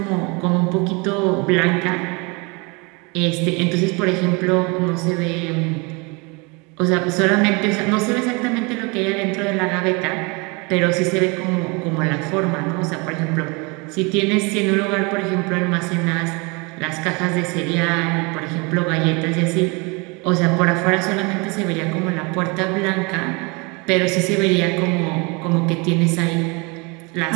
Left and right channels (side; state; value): left; quieter; 28.9 dB